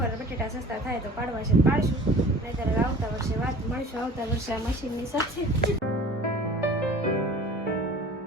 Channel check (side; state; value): both; normal; correlation 0.44